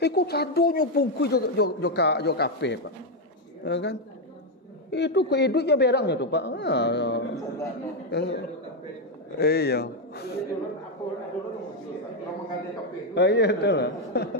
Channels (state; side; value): normal; both; correlation 0.04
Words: sadonyo bungkus jo kapih Pak. Ya kan? Itu kehidupannya berangnya tuh Pak. Iya. Iya betul lah.